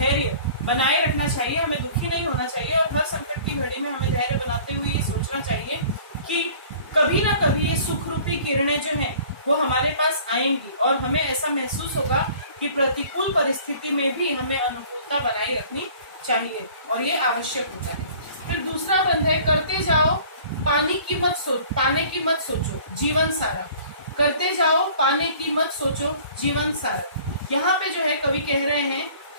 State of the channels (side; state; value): both; inverted; correlation -0.49